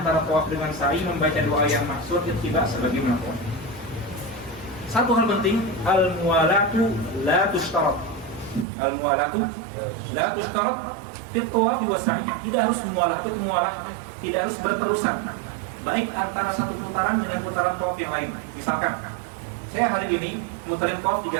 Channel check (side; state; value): left; drops out; at 8.7 s